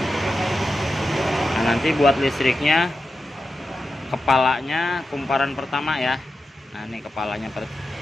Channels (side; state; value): both; normal; correlation 0.90